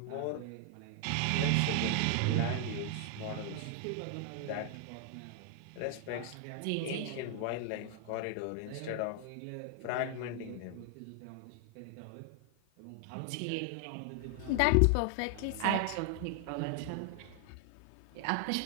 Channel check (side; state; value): both; different; correlation 0.00